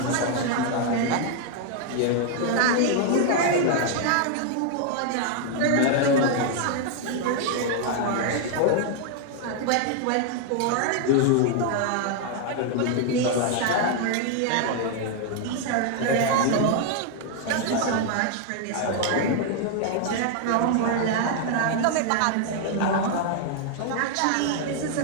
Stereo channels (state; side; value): different; both; correlation 0.00